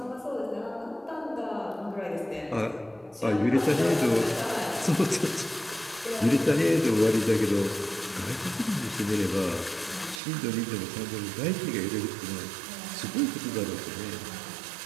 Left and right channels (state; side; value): drops out; left; at 10.2 s